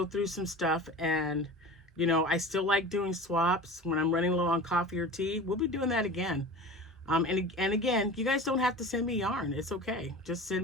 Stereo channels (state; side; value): normal; both; correlation 0.35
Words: through some stuff, and, you know, I still like doing swaps when I'm running low on coffee or tea. We'll be doing that again. And again, you guys don't have to send me yarn. It's okay. Just